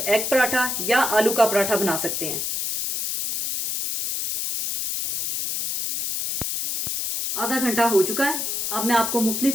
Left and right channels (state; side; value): noise; left; hiss, 2 dB below the sound